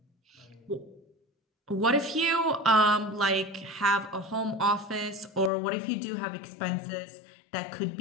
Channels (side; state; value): right; drops out; at 5.5 s